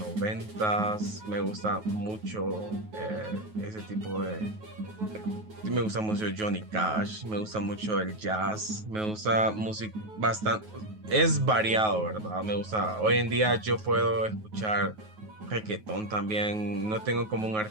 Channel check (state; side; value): late; left; 9.4 ms